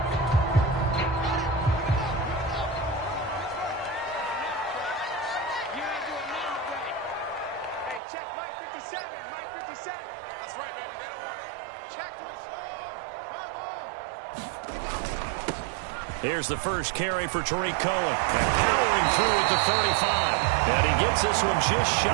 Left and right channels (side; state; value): left; drops out; at 8.0 s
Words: Here's the first carry for Tariq Cohen. And powering through at the 35. And he gets this one just